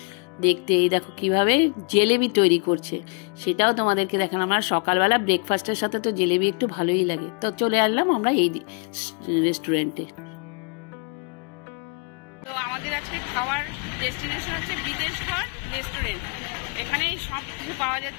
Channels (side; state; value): right; quieter; 36.6 dB